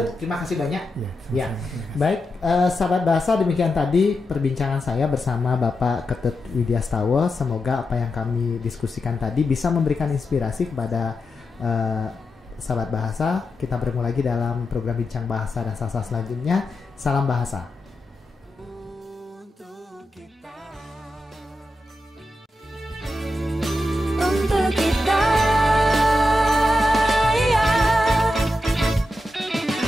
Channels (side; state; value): both; normal; correlation 0.88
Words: terima kasih banyak. Ya. Baik, sahabat bahasa, demikian tadi perbincangan saya bersama Bapak Ketut Widyastawa. Semoga apa yang kami diskusikan tadi bisa memberikan inspirasi kepada sahabat bahasa. Kita bertemu lagi dalam program Bincang Bahasa dan Sastra selanjutnya. Salam bahasa.